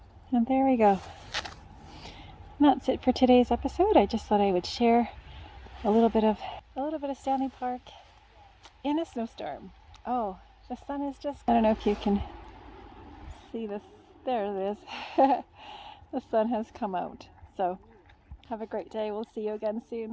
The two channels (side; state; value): both; identical; correlation 1.00